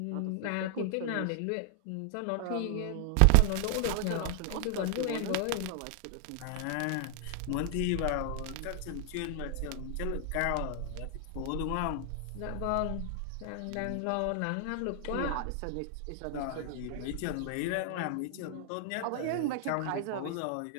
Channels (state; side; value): different; both; correlation 0.00